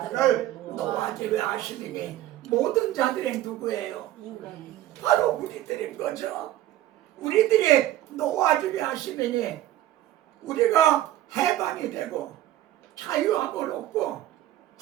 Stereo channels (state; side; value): quieter; left; 14.0 dB